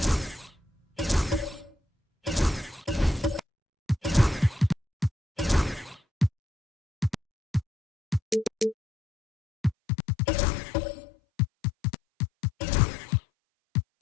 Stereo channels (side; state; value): right; drops out; at 9.8 s